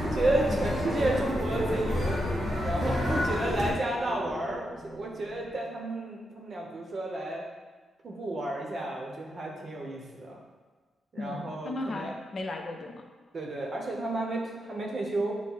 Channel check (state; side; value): normal; both; correlation 0.85